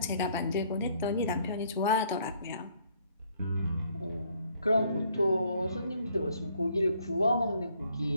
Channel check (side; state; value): both; inverted; correlation -0.66